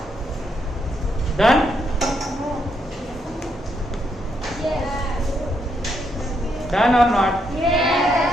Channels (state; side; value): normal; both; correlation 0.77